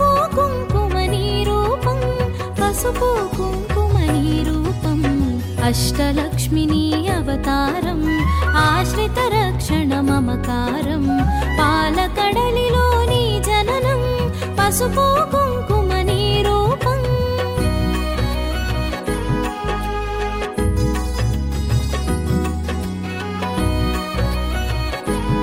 కుంకుమని రూపం పసుపు కుంకుమని రూపం అష్టలక్ష్మిని అవతారం ఆశ్రిత రక్షణ మమకారం పాలకడలిలోని జననం పసుపు కుంకుమని రూపం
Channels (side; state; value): both; identical; correlation 1.00